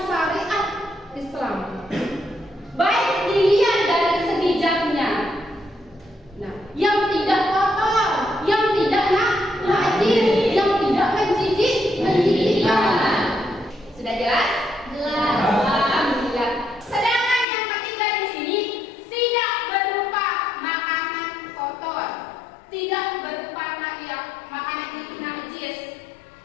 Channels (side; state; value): right; drops out; at 17.4 s